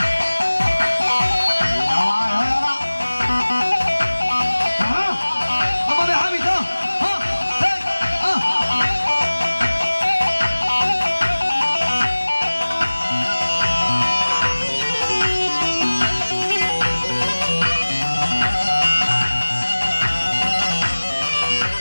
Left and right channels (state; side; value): inverted; both; correlation -1.00